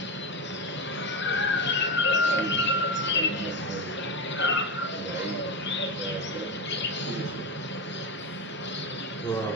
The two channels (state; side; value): normal; both; correlation 0.16